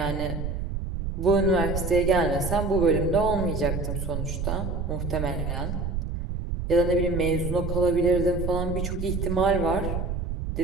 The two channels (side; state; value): right; noise; rumble, 3 dB below the sound